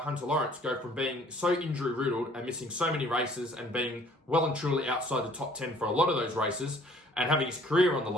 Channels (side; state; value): both; normal; correlation 0.56